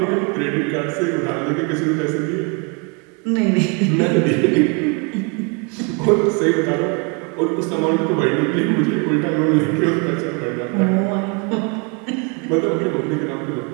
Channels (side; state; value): left; quieter; 34.0 dB